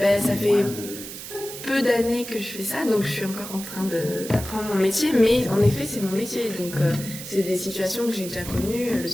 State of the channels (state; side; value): noise; right; hiss, 11 dB below the sound